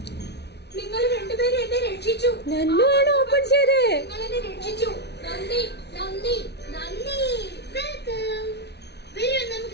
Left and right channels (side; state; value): right; late; 0.49 ms